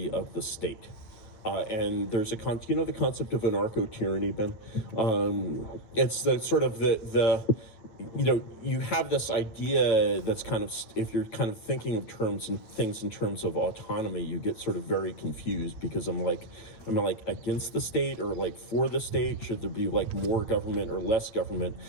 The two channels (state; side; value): late; right; 9.0 ms